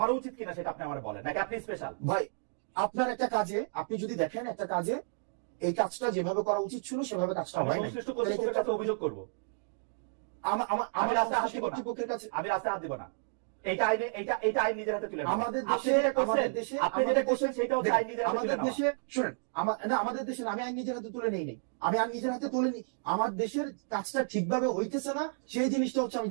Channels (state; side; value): silent; left; digital silence